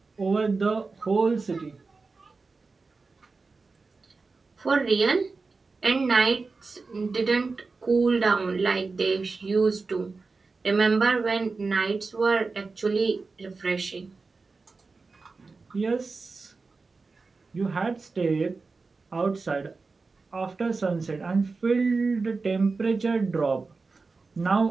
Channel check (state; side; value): quieter; left; 4.1 dB